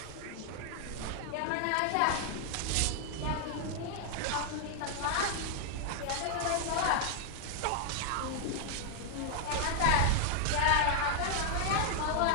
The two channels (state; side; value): different; both; correlation 0.00